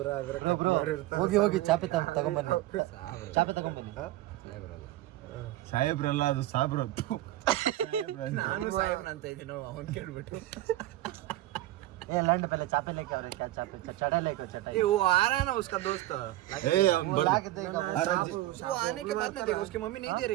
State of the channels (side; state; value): left; quieter; 16.0 dB